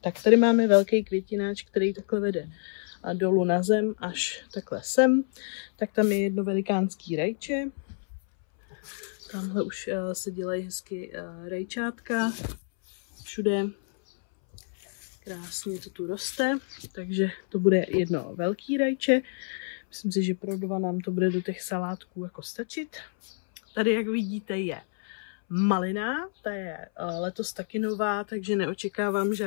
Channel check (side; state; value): right; silent; 59 dB below the other